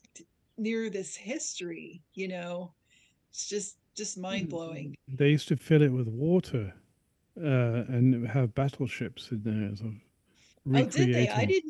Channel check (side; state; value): both; identical; correlation 1.00